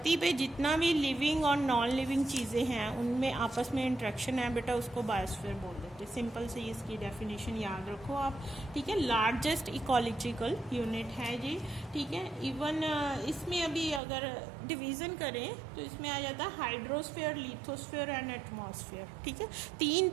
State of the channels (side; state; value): left; drops out; at 14.0 s